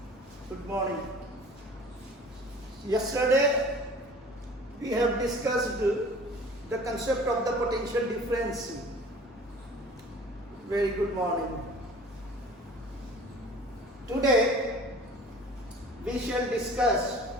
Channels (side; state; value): both; normal; correlation 0.46